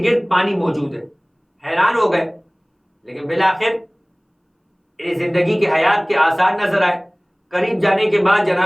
گرد پانی موجود ہے۔ حیران ہو گئے، لیکن بالآخر زندگی کے حیات کے آثار نظر آئے۔ قریب جانے کے بعد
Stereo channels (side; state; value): both; identical; correlation 1.00